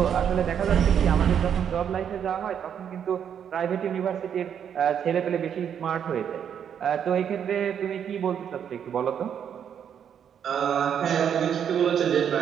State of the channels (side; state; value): left; quieter; 8.4 dB